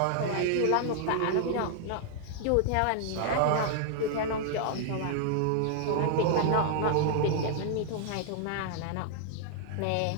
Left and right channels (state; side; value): different; both; correlation 0.00